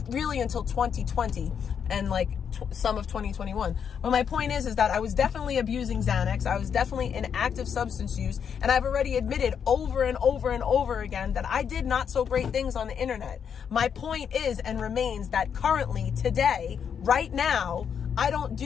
really until 2020 and like some of 2021. But my point is that I was definitely abusing Xanax. I was definitely in active substance use. And I've already admitted over and over and over again that I did not so great things on the internet. My point is and remains that currently, today, right now, I don't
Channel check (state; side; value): quieter; right; 7.5 dB